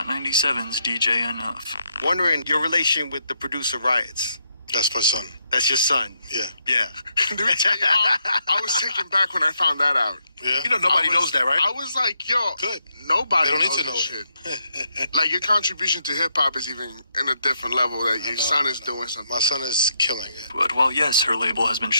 97's DJ Enough. Wondering your relation with the producer Riots. That's my son. That's your son? Yeah. Yeah. Let me tell you, I was taken back when I found that out. Yeah. You know nobody knows that, right? I was like, yo, Good. Nobody They don't knows need to know this shit. Like, your contribution to hip-hop is even in a different level that your son is doing something. My son is killing it. But while yes, her label has been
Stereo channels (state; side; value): inverted; both; correlation -0.77